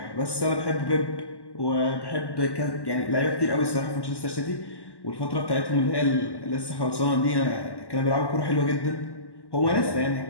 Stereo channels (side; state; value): right; late; 1.1 ms